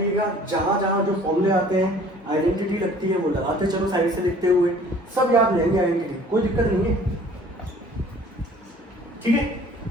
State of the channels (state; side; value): normal; both; correlation 0.51